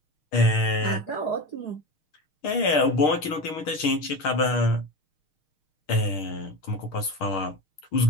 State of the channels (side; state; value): right; late; 6.4 ms